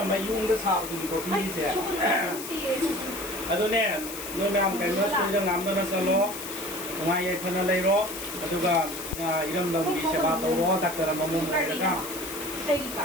mayung da sa du ko pi se ado ne no nam ka no su da ngam na sa lo ngai ye khana lai ro adu ga iram da bi se ba to ro ta ka ma mum ka ka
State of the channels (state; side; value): noise; left; hiss, 9 dB below the sound